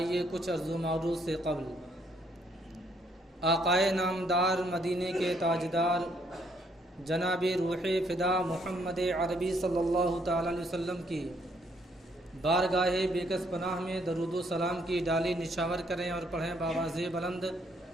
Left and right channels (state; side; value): normal; both; correlation 0.69